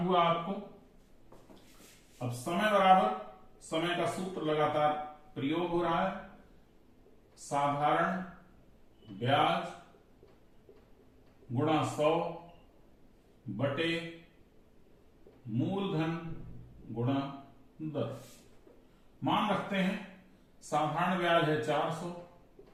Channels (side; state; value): both; identical; correlation 1.00